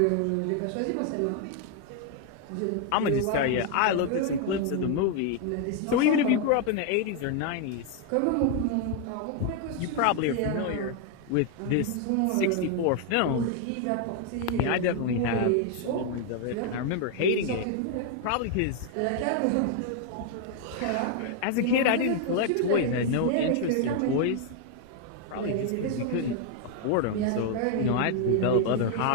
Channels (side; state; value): both; different; correlation 0.00